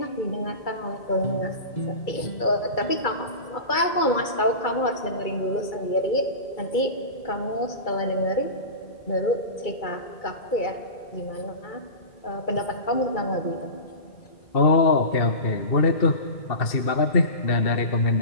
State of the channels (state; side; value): late; right; 2.3 ms